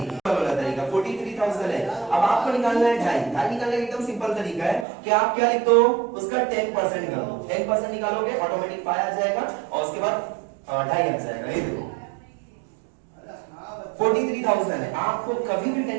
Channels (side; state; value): left; drops out; at 4.9 s